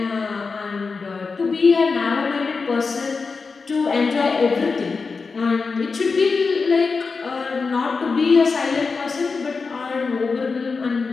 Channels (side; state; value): right; quieter; 4.6 dB